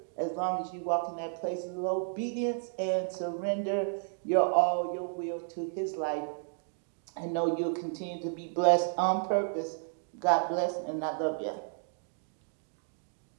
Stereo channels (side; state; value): left; silent; digital silence